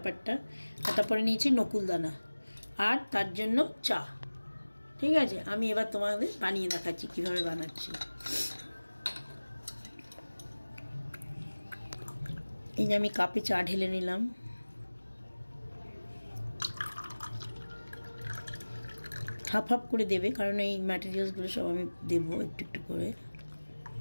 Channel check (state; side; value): inverted; both; correlation -1.00